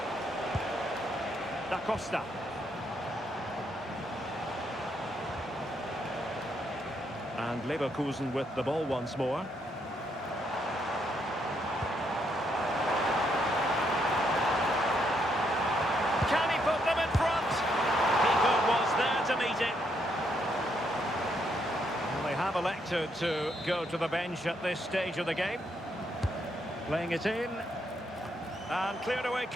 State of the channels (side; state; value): both; normal; correlation 0.75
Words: Da Costa. And Leverkusen with the ball once more. Can he put them in front? Keeper was there to meet it. Well, they have elected to go to the bench at this stage of the game. Playing it in. And cleared away